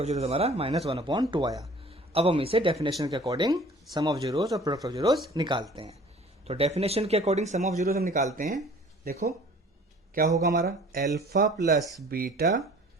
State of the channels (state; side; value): normal; both; correlation 0.49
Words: जीरोस हमारा -1/2 आया। अब हम इसे डेफिनेशन के अकॉर्डिंग सम ऑफ जीरोस और प्रोडक्ट ऑफ जीरोस निकालते हैं। तो डेफिनेशन के अकॉर्डिंग सम ऑफ जीरोस हम निकालते हैं। देखो क्या होगा हमारा, अल्फा प्लस बीटा,